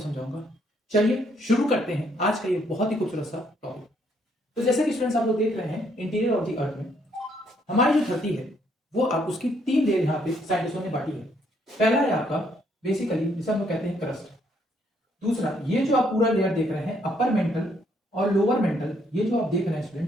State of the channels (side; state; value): both; normal; correlation 0.70